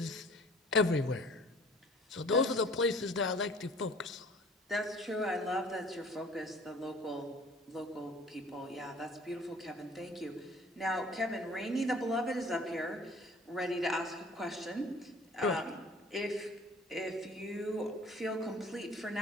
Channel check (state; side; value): normal; both; correlation 0.50